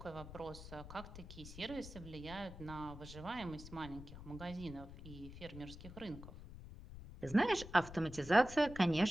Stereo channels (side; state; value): left; noise; rumble, 13 dB below the sound